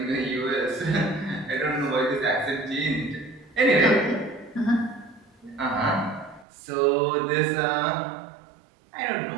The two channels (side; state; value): left; drops out; at 6.5 s